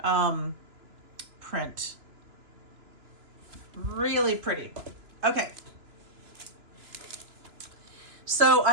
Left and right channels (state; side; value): late; left; 2.9 ms